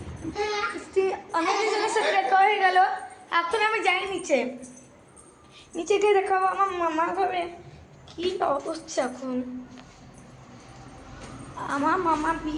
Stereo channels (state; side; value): identical; both; correlation 1.00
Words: অনেকদিন জনের সাথে দেখা হয়ে গেল। এখন আমি যাই নিচে, নিচে গিয়ে দেখাবো আমার মামা ঘরে কি অবস্থা। এখন আমার মামা